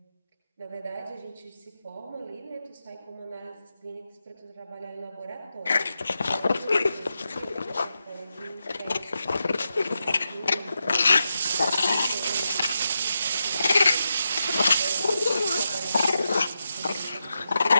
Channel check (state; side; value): inverted; both; correlation -0.87